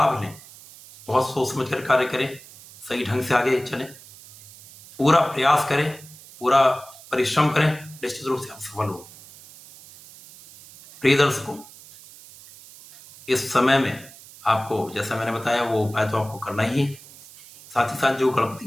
लें, बहुत सोच समझ कर कार्य करें, सही ढंग से आगे चलें, पूरा प्रयास करें, पूरा परिश्रम करें, निश्चित रूप से आप सफल होंगे। प्रिय दर्शकों, इस समय में आपको जैसा मैंने बताया वो उपाय तो आपको करना ही है। साथ ही साथ जो गणपति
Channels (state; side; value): noise; right; hiss, 20 dB below the sound